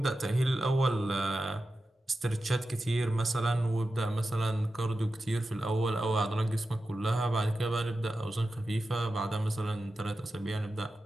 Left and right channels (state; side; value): normal; both; correlation 0.92